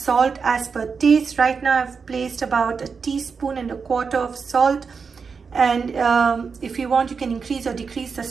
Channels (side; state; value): left; quieter; 5.4 dB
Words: as per taste. Right now I've placed about 1.25 teaspoons of salt, and if you want, you can increase or decrease the